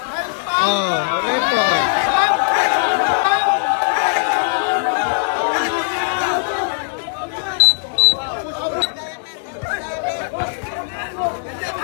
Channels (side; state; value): right; silent; digital silence